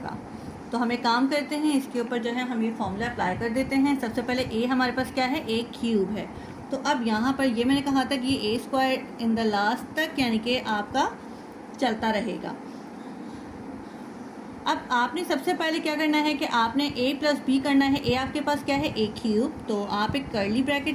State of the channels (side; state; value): both; identical; correlation 1.00